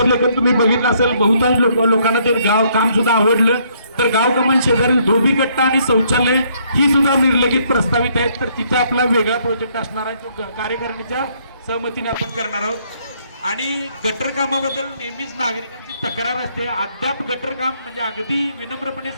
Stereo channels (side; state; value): both; inverted; correlation -0.68